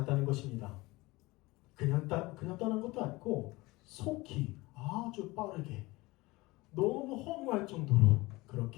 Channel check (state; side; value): quieter; right; 21.6 dB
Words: 것입니다. 그냥 떠난 것도 아니고 속히 아주 빠르게 너무 허무할 정도로